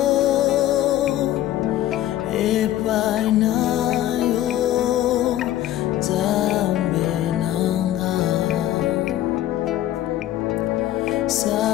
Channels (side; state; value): right; quieter; 13.3 dB